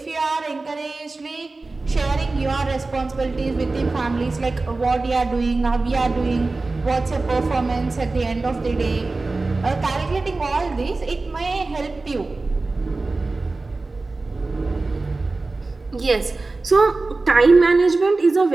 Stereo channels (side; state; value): left; quieter; 3.5 dB